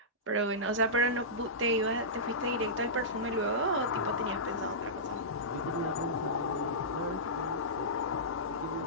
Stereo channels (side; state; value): both; normal; correlation -0.17